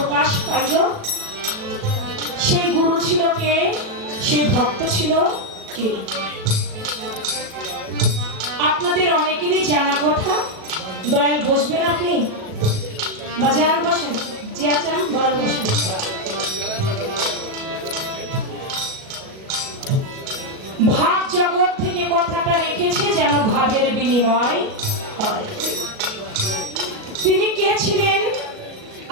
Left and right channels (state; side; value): late; left; 37 ms